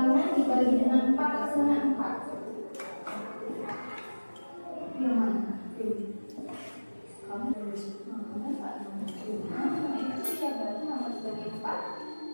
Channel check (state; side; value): inverted; both; correlation -1.00